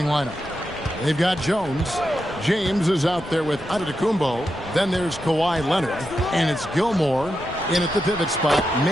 lineup. They've got Jones. James is out there with Antetokounmpo. Then there's Kawhi Leonard. And it's Gilmore in at the pivot spot,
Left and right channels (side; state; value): left; noise; rumble, 18 dB below the sound